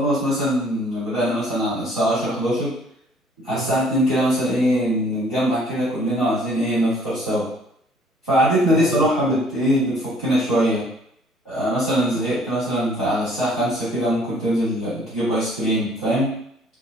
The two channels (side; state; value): both; normal; correlation 0.59